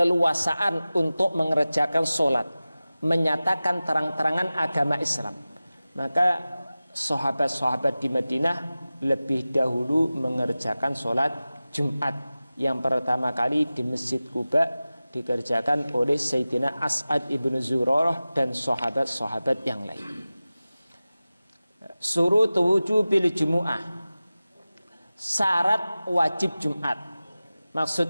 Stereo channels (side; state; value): both; inverted; correlation -0.96